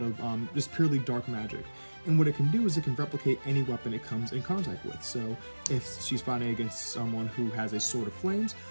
just purely dark magic. And what it can do is it can replicate any weapon it comes in contact with. So if she's fighting against someone who has a sword of flames,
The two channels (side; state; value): both; inverted; correlation -1.00